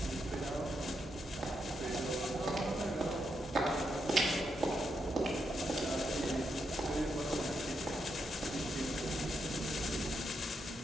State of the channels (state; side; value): normal; both; correlation 0.82